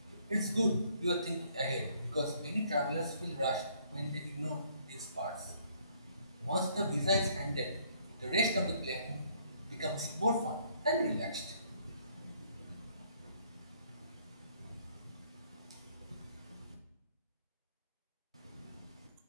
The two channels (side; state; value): both; inverted; correlation -0.65